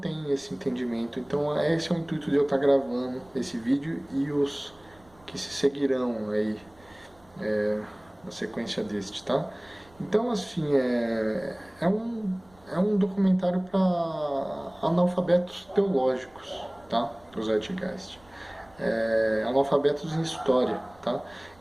esse entendimento. Então esse é o intuito de eu estar gravando esse vídeo e os que se seguirão aí na sequência deste, tá? Então assim, é um documentário para analfabetos teológicos, tá? O Zeitgeist. Analfabetos em história, tá?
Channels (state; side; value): noise; right; rumble, 28 dB below the sound